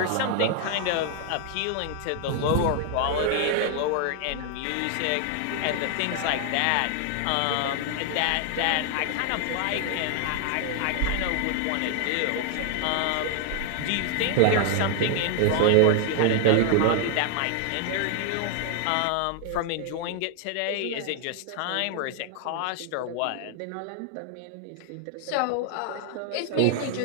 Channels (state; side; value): different; both; correlation 0.00